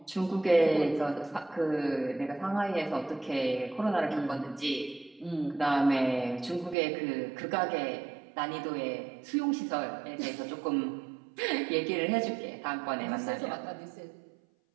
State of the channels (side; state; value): left; drops out; at 6.8 s